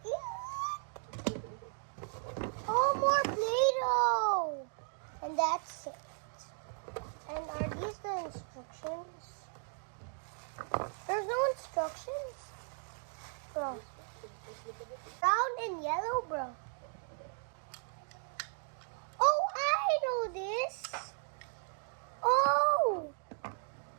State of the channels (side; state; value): left; silent; 54 dB below the other